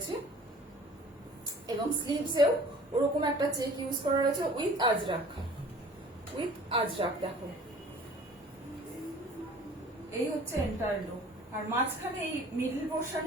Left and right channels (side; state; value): both; normal; correlation 0.48